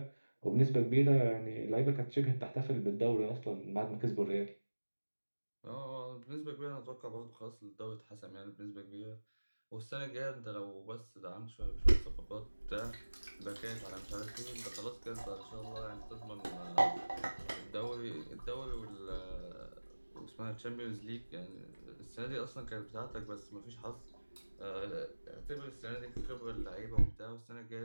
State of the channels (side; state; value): both; inverted; correlation -1.00